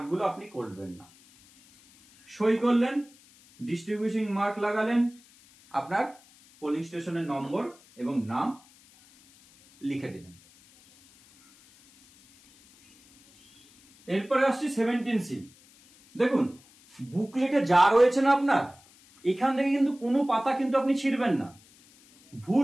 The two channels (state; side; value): noise; left; hiss, 27 dB below the sound